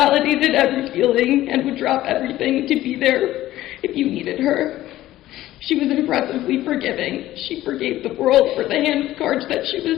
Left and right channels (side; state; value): right; quieter; 14.9 dB